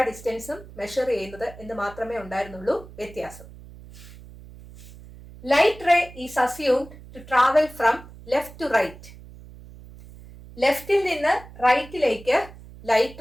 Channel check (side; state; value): right; noise; hum, 18 dB below the sound